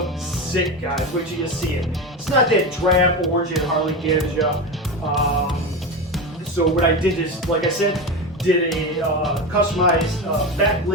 sick, guys. Wait till you see it. It's not that drab orange that Harley gives you. So what I did is, like I said, did a customized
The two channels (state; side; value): normal; both; correlation 0.20